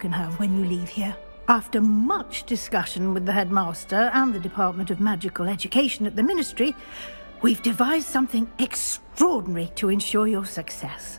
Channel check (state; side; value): inverted; both; correlation -1.00